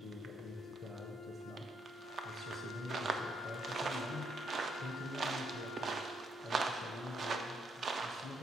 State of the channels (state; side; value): normal; both; correlation 0.75